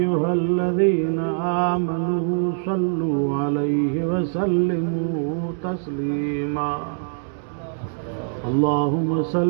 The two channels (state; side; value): silent; left; digital silence